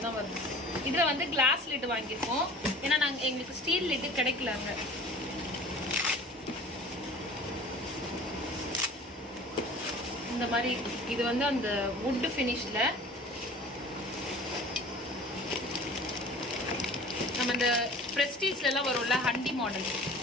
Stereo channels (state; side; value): normal; both; correlation 0.43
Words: தான் வருது. இதுல வந்து கிளாஸ் லிட் வாங்கியிருக்கோம். ஏன்னா நாங்கள் எங்களுக்கு ஸ்டீல் லிட் கிடைக்கலாங்க. இந்த மாதிரி இது வந்து அந்த வுட் ஃபினிஷ்ல நம்ம இந்த பிரஸ்டீஜ்ல எல்லாம் வரும்ல ஹண்டி மாடல்,